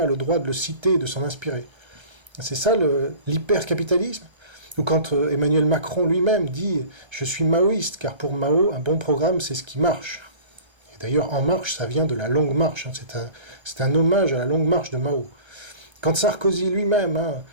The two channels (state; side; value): late; left; 1.3 ms